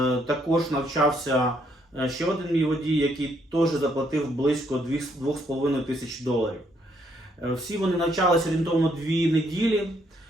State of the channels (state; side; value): normal; both; correlation 0.71